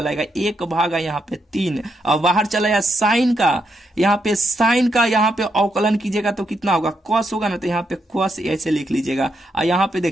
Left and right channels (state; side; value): normal; both; correlation 0.80